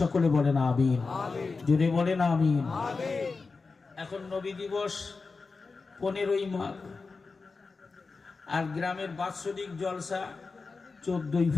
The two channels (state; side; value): quieter; right; 4.3 dB